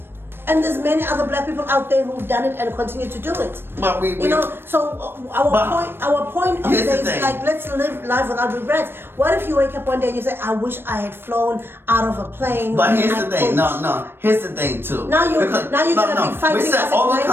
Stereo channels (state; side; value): late; left; 0.10 ms